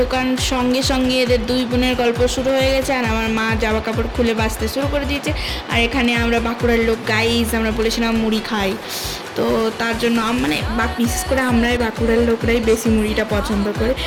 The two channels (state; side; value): identical; both; correlation 1.00